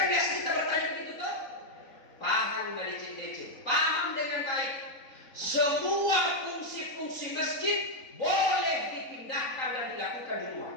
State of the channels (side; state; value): right; late; 3.9 ms